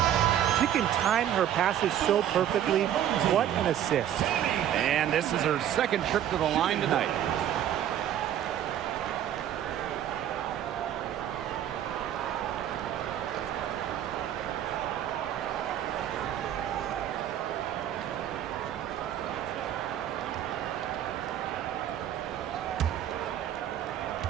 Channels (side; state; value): left; quieter; 10.8 dB